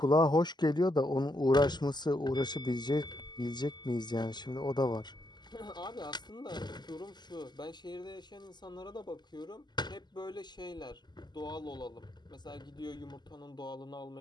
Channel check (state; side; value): late; right; 0.21 ms